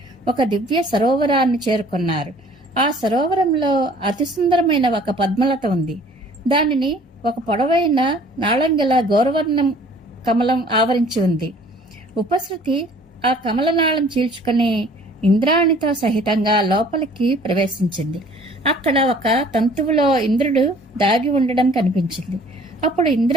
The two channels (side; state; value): both; normal; correlation 0.53